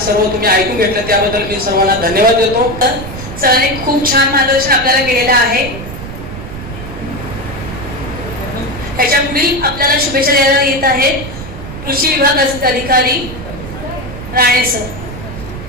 सर्व तुम्ही ऐकून घेतलं त्याबद्दल मी सर्वांना धन्यवाद देतो. सरांनी खूप छान मार्गदर्शन आपल्याला केलेलं आहे. पुढील आपल्याला शुभेच्छा द्यायला येत आहेत कृषी विभाग अधिकारी राणे सर.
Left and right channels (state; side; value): noise; right; rumble, 10 dB below the sound